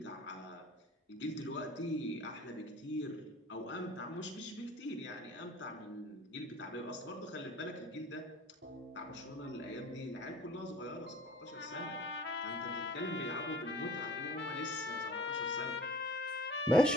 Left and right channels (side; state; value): both; normal; correlation 0.46